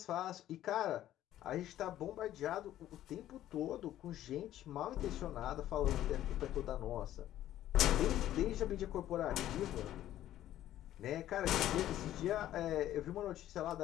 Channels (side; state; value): right; quieter; 12.9 dB